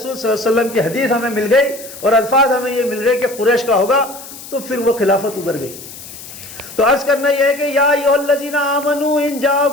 صلی اللہ علیہ وسلم کی حدیث ہمیں مل گئی اور الفاظ ہمیں یہ مل گئے کہ قریش کا ہوگا تو پھر وہ خلافت ادھر گئی. تو عرض کرنا یہ ہے کہ یا ایھا الذین آمنوا ان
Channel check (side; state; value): left; noise; hiss, 15 dB below the sound